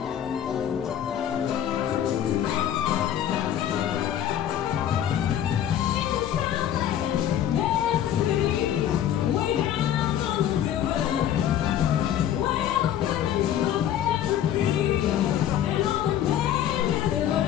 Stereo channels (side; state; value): right; quieter; 10.6 dB